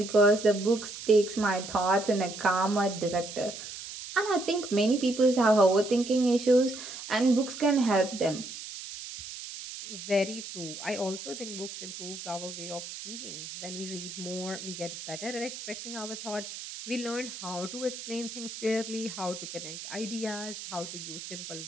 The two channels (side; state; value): right; noise; hiss, 10 dB below the sound